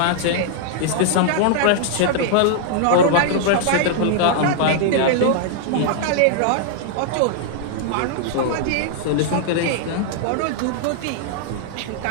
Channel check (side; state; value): both; different; correlation -0.01